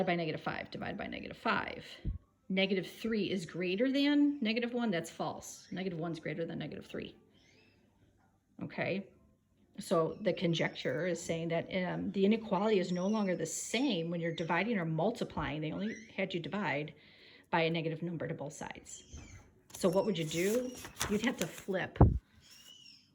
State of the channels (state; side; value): identical; both; correlation 1.00